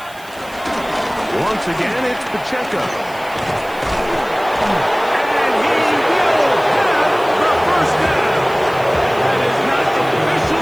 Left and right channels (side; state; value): right; noise; hiss, 22 dB below the sound